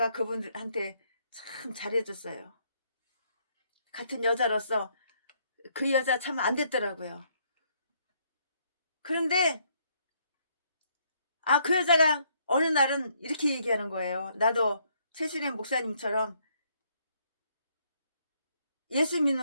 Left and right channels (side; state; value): both; inverted; correlation -0.70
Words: 그분한테 참 잘해줬어요. 같은 여자로서 그 여자 참 안 됐더라고요. 그런데 그 여자가 어느 날은 이렇게 얘기하는 거예요. 나도 최순애 목사님처럼 예수